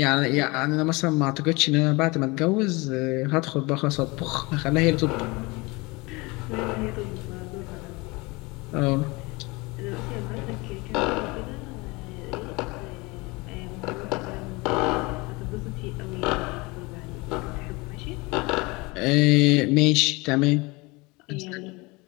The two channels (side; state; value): right; quieter; 25.0 dB